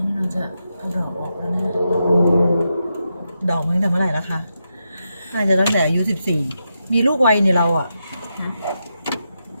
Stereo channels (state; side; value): inverted; both; correlation -0.86